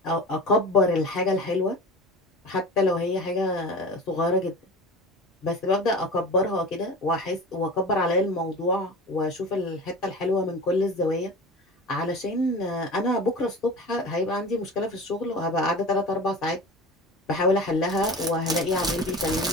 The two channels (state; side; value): normal; both; correlation 0.34